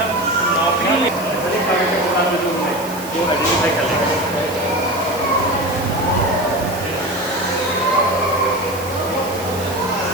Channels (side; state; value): right; noise; hiss, 14 dB below the sound